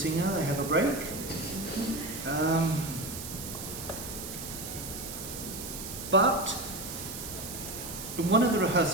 they have a break. But in one of the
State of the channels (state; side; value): noise; right; hiss, 8 dB below the sound